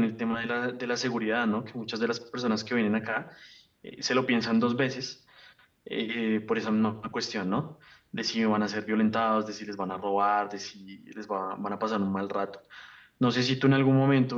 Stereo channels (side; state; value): both; identical; correlation 1.00